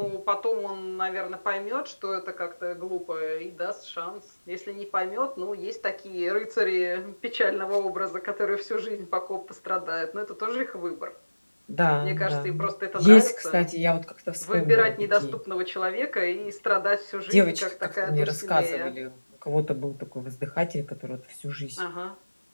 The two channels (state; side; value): inverted; both; correlation -1.00